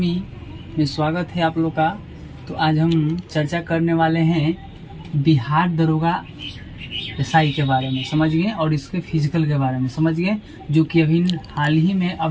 में स्वागत है आप लोग का। तो आज हम चर्चा करने वाले हैं बिहार दरोगा एसआई के बारे में, समझ गए, और इसके फिजिकल के बारे में समझ गए, जो कि अभी हाल ही में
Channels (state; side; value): identical; both; correlation 1.00